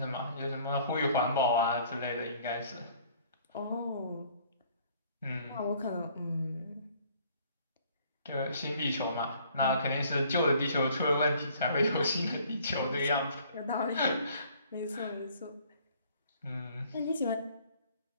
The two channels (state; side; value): inverted; both; correlation -0.57